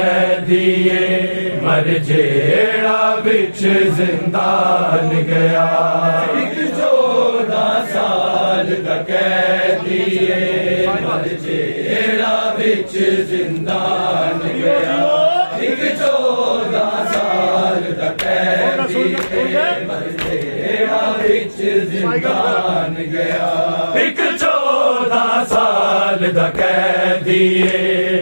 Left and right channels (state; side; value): inverted; both; correlation -1.00